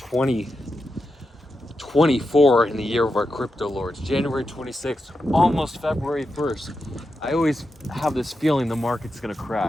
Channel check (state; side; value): normal; both; correlation 0.88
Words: in the year of our crypto lords. January 26th, almost February 1st. I always have this feeling the market's gonna